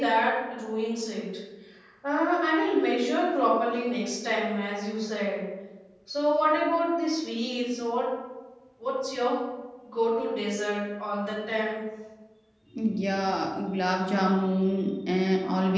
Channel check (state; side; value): identical; both; correlation 1.00